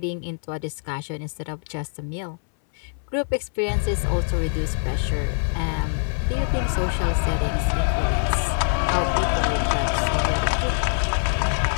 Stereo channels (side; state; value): right; silent; 61 dB below the other